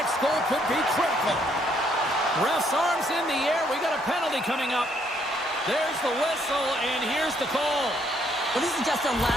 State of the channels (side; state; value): both; normal; correlation 0.69